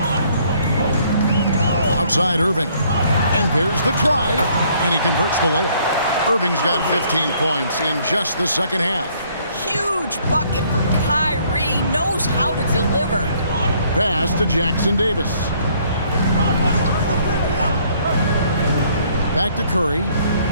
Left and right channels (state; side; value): inverted; both; correlation -0.64